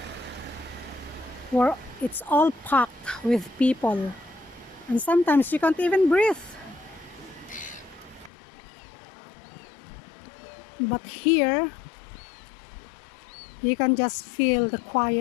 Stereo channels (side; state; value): right; drops out; at 8.3 s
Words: where it's all packed with people. And sometimes you can't even breathe. But here, you can just feel the